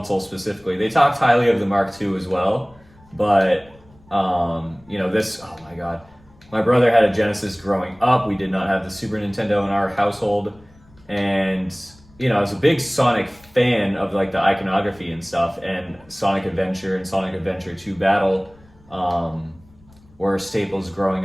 specifically. They talked highly of the Mark II as well, but this, oh my god. My brother had a Genesis growing up. We did not have the Super Nintendo in our household, and I was a big Sonic fan of like the iconography and stuff, and Sonic Adventure and Sonic Adventure 2 Battle were staples growing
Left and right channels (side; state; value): left; noise; rumble, 28 dB below the sound